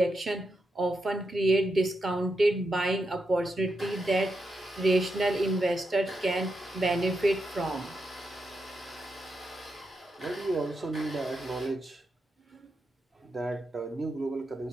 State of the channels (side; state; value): both; normal; correlation 0.85